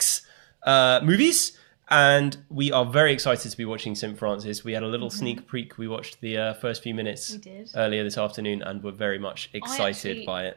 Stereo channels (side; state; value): left; silent; digital silence